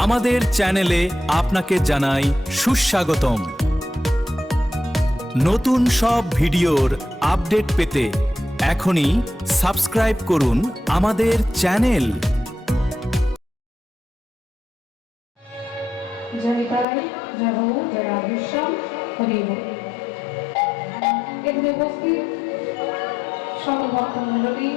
আমাদের চ্যানেলে আপনাকে জানাই সুস্বাগতম। নতুন সব ভিডিওর আপডেট পেতে এখনই সাবস্ক্রাইব করুন আমাদের চ্যানেল। এখানে উপস্থিত সকল ভক্তমণ্ডলী,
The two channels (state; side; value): drops out; right; at 16.9 s